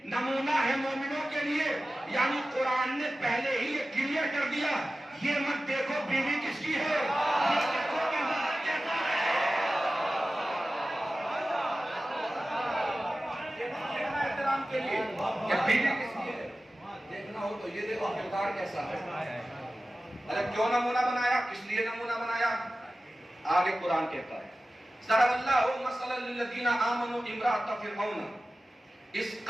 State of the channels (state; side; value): normal; both; correlation 0.95